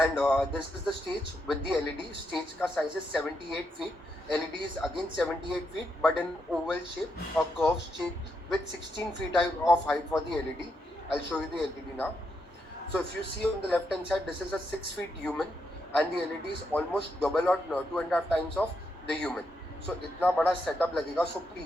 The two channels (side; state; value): both; normal; correlation 0.81